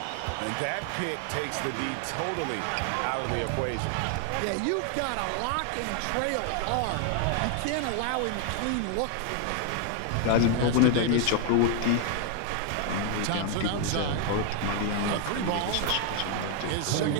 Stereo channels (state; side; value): different; both; correlation 0.00